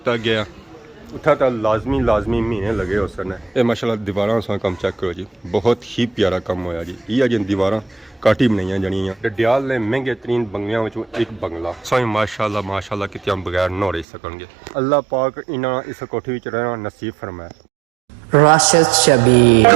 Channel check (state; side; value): drops out; left; at 14.1 s